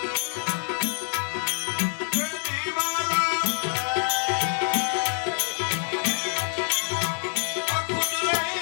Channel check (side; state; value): right; silent; 61 dB below the other